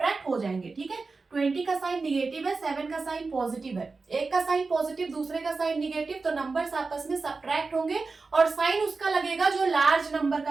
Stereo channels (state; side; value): quieter; left; 4.1 dB